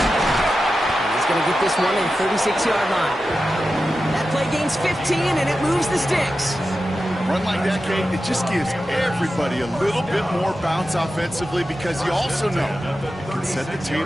he's going to get this one in 36-yard line. That play gains 15, and it moves the sticks. run like that, Kate, it just gives everybody a little bit more bounce offensively because you also know it can set the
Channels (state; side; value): normal; both; correlation 0.92